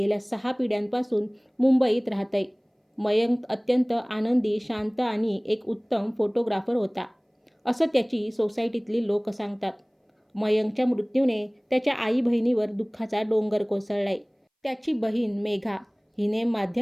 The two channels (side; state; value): both; identical; correlation 1.00